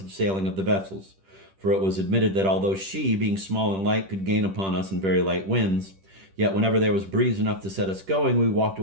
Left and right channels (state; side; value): late; left; 10 ms